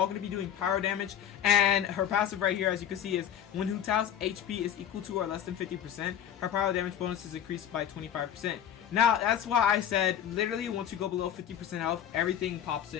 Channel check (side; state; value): right; quieter; 9.9 dB